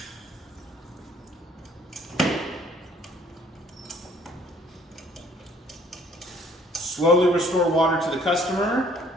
Slowly restore water to the customer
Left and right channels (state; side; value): normal; both; correlation 0.59